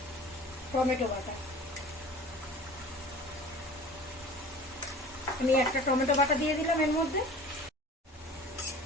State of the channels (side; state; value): both; normal; correlation 0.42